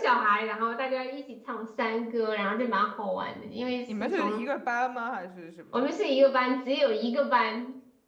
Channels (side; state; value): both; identical; correlation 1.00